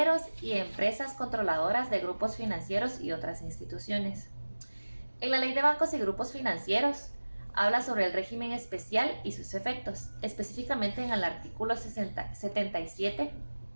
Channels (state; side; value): inverted; both; correlation -1.00